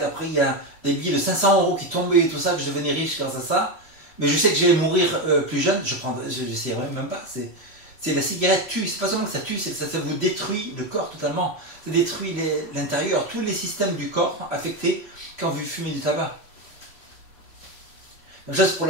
après il y a des billets de 500 € qui tombaient et tout ça, que je devenais riche grâce à ça, mais je sais que j'allais mourir plus jeune, je n'essayerais même pas. C'est la cigarette tue, c'est pas seulement que ça tue, ça vous détruit le corps totalement. Ça détruit l'intérieur, tous les systèmes du corps affectés quand vous fumez du tabac. Même chose pour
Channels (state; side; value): late; right; 3.1 ms